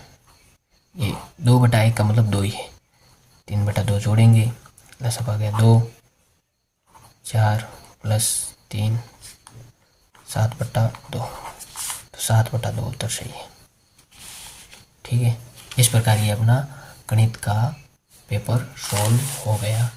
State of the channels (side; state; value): both; identical; correlation 1.00